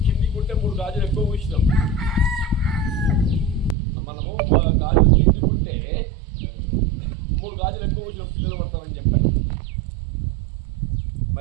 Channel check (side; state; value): left; drops out; at 3.8 s